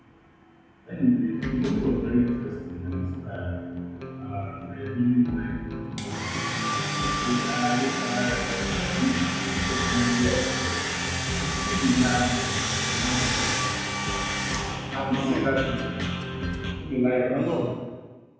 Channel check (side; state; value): both; identical; correlation 1.00